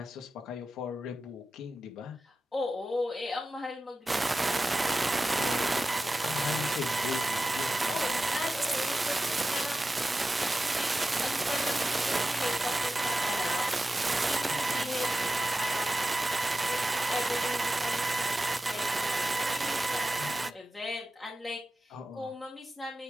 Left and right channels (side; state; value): both; normal; correlation 0.94